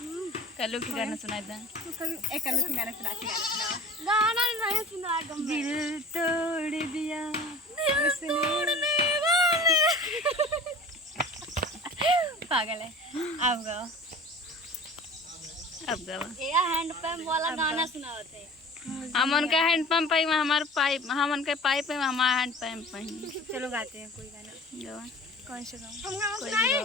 कल्लू की गाना सुनाए था। गाना नहीं सुना दिल तोड़ दिया पागल है। अब गाओ, अब गावा। ये हैंड पंप वाला गाना सुना थे। हम उनका हैंड पंप पे, हमारे पाइप, हम उनके पाइप पे, हमारा हैंड पंप पे। चलो गाते हैं कोई गाना। गावा। कौन सा गाऊं? हम गाना कोई भी सुनाए।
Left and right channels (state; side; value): normal; both; correlation 0.42